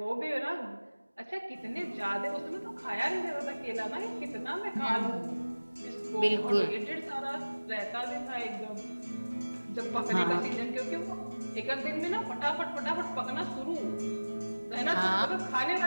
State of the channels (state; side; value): inverted; both; correlation -1.00